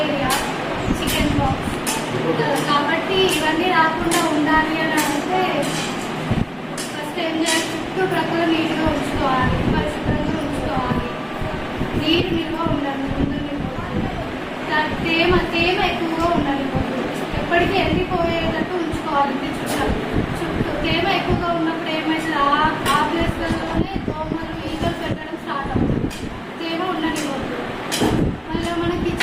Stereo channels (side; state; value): both; identical; correlation 1.00